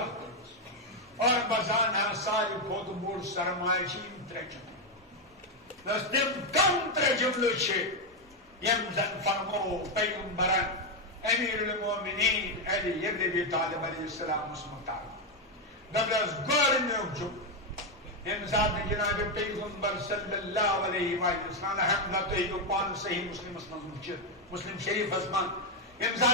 اور بزانا ساری خود بوڑ سرمائے چیم ترے جملے بس تم کم ترے جملے چھے یم زن فرمو پیغمبران امیر المومنین علی ابن ابی طالب علیہ السلام مسمتار دبرز گورنیو جملے امزاد جناب پیغمبر صلی اللہ علیہ وسلم حمدہ تو پان صحیح مسلم اسمان مسلم شریف اسمان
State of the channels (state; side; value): normal; both; correlation 0.05